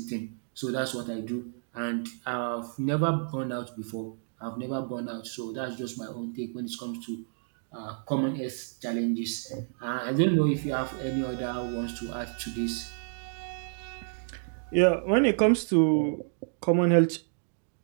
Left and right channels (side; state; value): left; silent; digital silence